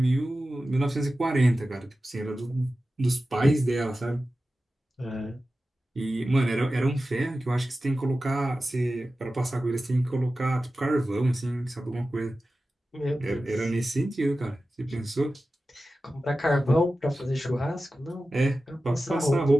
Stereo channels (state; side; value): normal; both; correlation 0.94